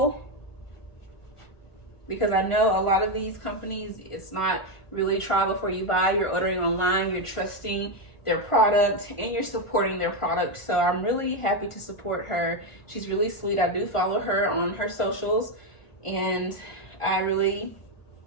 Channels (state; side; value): late; right; 1.4 ms